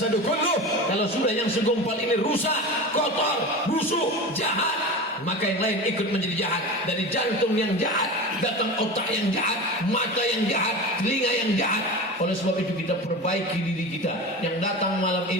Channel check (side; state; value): both; normal; correlation 0.29